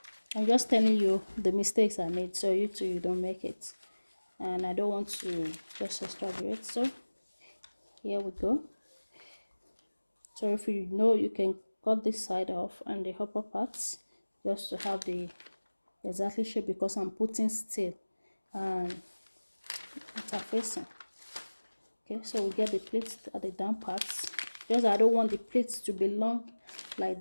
I'm just telling you the mistakes I made, so you don't make it, and I don't want to just exaggerate. So here we go. So if you know, you can cut this side off and the upper parts just to have the exactly shape, because I'm putting steel and interfacing. Okay, so we get the pleats at the down parts. Just I don't want the pleats to be long like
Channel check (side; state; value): both; inverted; correlation -1.00